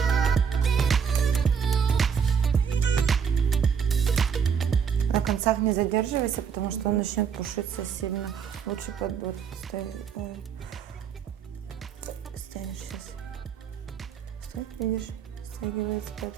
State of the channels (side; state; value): left; quieter; 6.9 dB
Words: На концах не задерживайся, потому что он начнет пушиться сильно. Лучше под вот стянешь сейчас. Что, видишь, стягивается,